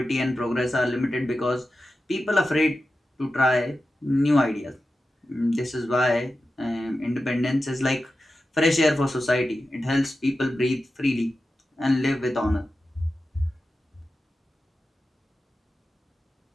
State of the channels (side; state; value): both; normal; correlation 0.92